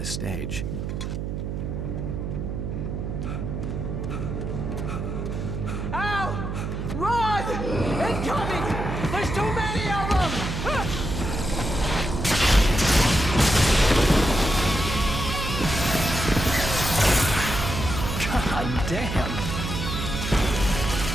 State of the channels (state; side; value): noise; right; hum, 4 dB below the sound